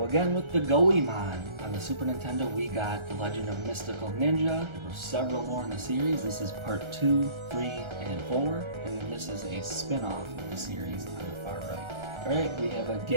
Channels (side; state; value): left; late; 1.3 ms